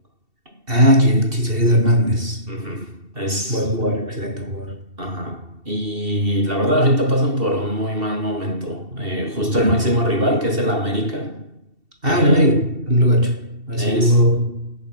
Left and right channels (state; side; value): late; left; 2.7 ms